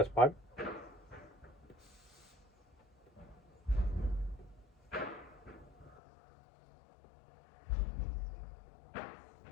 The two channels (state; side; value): drops out; right; at 6.0 s